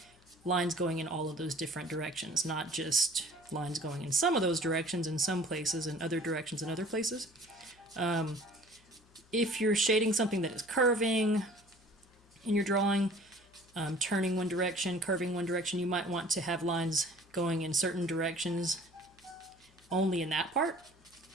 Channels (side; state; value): left; noise; hum, 29 dB below the sound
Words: lines going in all of those different directions, not just lines going in some of those directions in some places and other directions in other places. If you're shading something that is curving in your drawing, turning one direction, curving one direction, you might want to have lines going in certain directions only in that part.